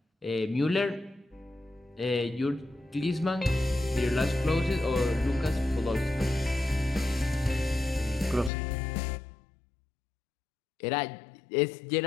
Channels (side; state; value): right; drops out; at 8.5 s